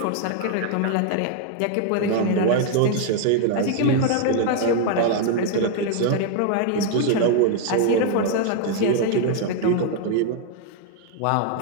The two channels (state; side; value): different; both; correlation 0.00